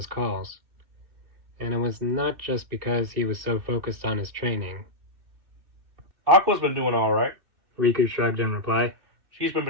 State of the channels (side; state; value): left; late; 2.6 ms